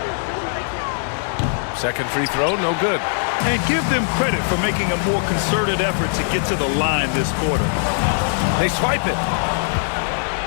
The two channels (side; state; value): right; silent; digital silence